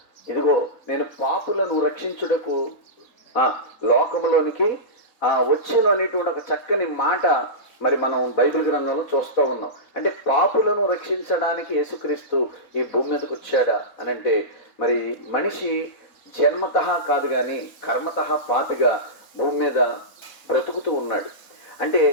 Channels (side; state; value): right; late; 3.8 ms